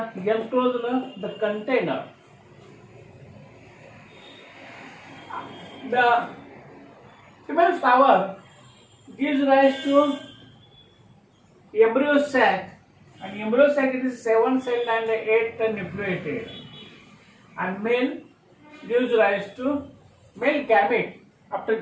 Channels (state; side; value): identical; both; correlation 1.00